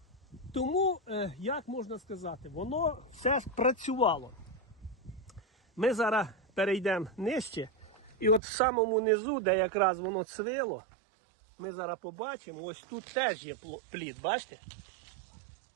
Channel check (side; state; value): left; drops out; at 8.4 s